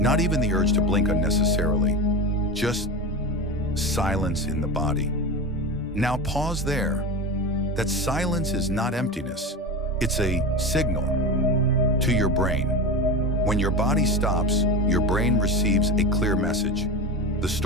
even the urge to blink unnecessarily. Just silence in the body. Now pause there. That silence is not emptiness. It's a signal to your brain. When your body stops, your brain receives a clear message. The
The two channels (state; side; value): normal; both; correlation 0.24